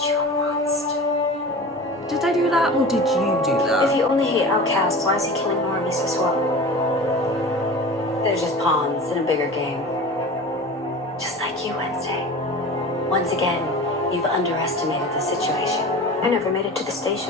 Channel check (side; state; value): both; normal; correlation 0.35